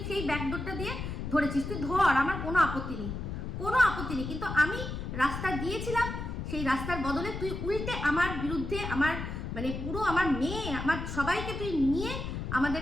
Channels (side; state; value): left; noise; rumble, 5 dB below the sound